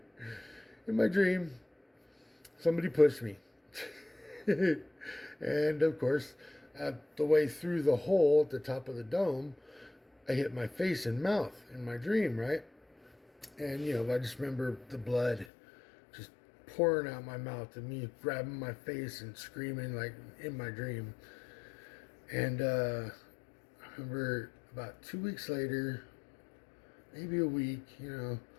my dream, somebody pushed me. And of course, at the way through the hole at the top of the dome, I hit my face and mouth in my dream, right? And, I just remember the blood just pouring out my mouth and me grabbing my face and screaming like in my dream. And I remember about 2 weeks later, maybe a week,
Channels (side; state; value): right; drops out; at 15.5 s